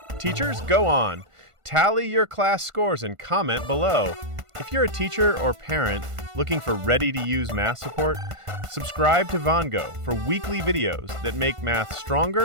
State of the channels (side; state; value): left; late; 1.5 ms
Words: Teachers, go on. Tally your class scores and comment below. If you're a teacher or parent looking for ready-to-use math support, subscribe to Vongo for weekly videos that make math